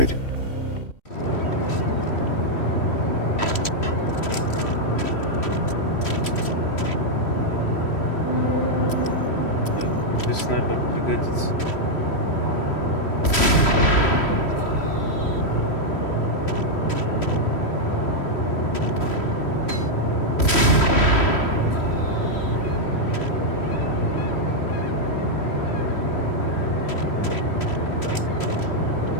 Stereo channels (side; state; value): right; late; 3.1 ms